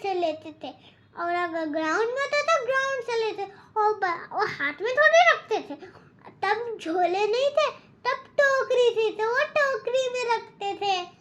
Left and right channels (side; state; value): both; identical; correlation 1.00